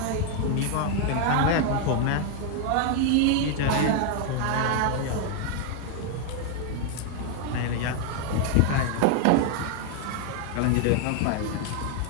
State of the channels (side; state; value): both; different; correlation 0.00